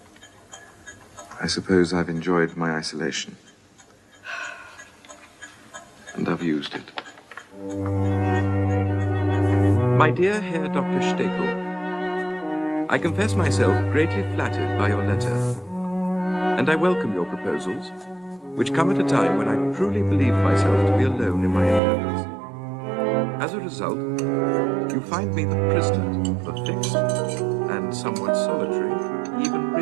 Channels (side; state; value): left; drops out; at 21.8 s